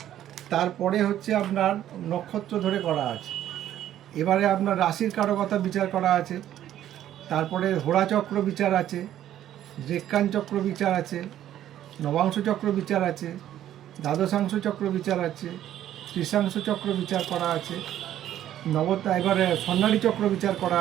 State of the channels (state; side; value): quieter; left; 11.8 dB